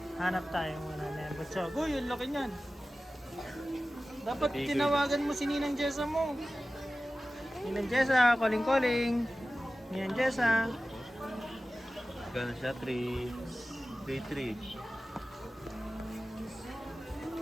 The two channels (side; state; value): both; normal; correlation 0.96